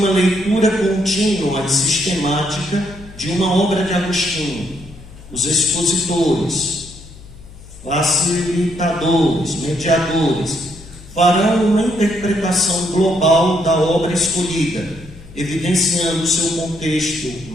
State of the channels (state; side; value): noise; left; hum, 19 dB below the sound